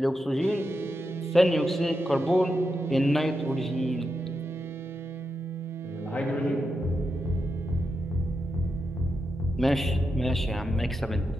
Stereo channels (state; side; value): normal; both; correlation 0.87